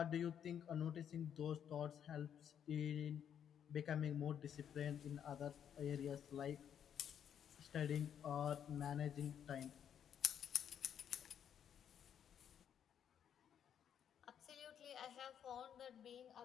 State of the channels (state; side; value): quieter; right; 8.9 dB